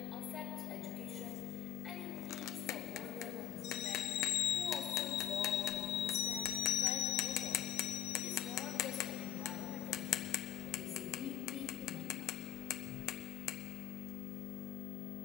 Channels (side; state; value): right; quieter; 11.4 dB